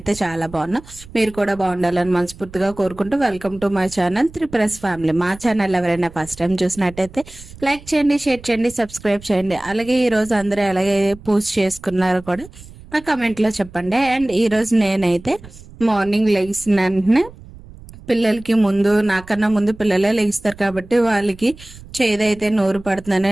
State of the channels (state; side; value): noise; right; rumble, 19 dB below the sound